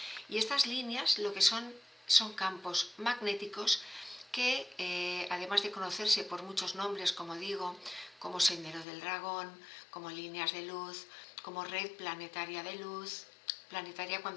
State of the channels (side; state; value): right; drops out; at 8.8 s